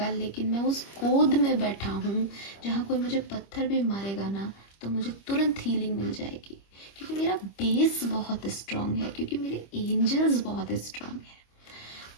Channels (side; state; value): right; late; 25 ms